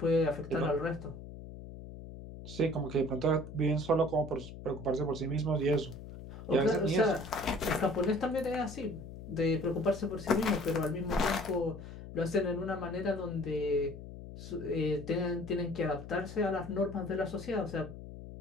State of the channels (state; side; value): noise; left; hum, 12 dB below the sound